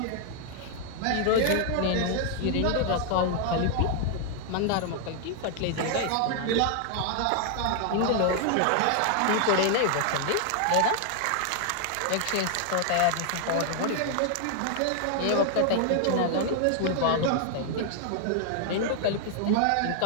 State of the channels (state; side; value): different; both; correlation 0.00